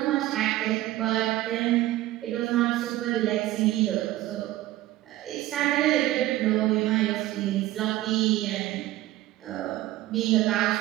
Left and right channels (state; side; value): quieter; left; 15.9 dB